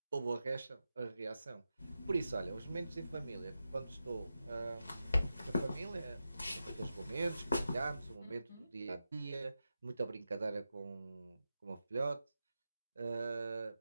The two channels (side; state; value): both; inverted; correlation -0.91